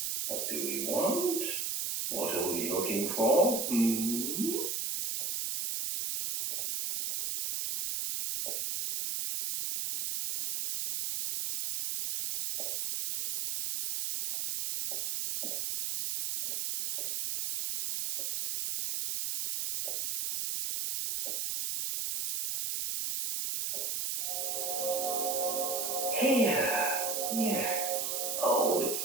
What do we want? What are we looking for? Here. Yes. Oh, it's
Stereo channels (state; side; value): noise; right; hiss, 1 dB below the sound